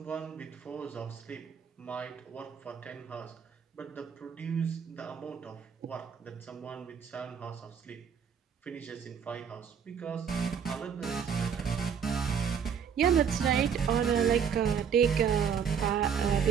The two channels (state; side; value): quieter; left; 7.3 dB